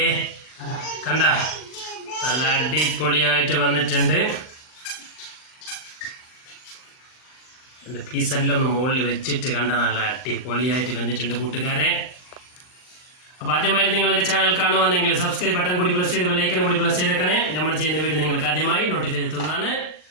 കണ്ട നല്ല അടിപൊളിയായിട്ട് വന്നിട്ടുണ്ട്. എൻ്റെ പീസെല്ലാം ഒന്ന് മുകളിൽ വെച്ചിട്ട് കണ്ട നല്ല അടിപൊളിയായിട്ട് വന്നിട്ടുണ്ട് കൂട്ടുകാരെ. അപ്പോൾ ആദ്യമായിട്ട് നിങ്ങൾ എൻ്റെ ചാനൽ കാണുവാണെങ്കിൽ സബ്സ്ക്രൈബ് ബട്ടൺ കൂടി പ്രസ് ചെയ്ത് ബെല്ലൈക്കൺ കൂടി പ്രസ് ചെയ്തേക്കണേ. നമ്മൾ ചെയ്യുന്ന വീഡിയോ നിങ്ങൾക്ക് ആദ്യമായി നോട്ടിഫൈ എത്തുന്നതാണ്.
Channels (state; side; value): late; right; 39 ms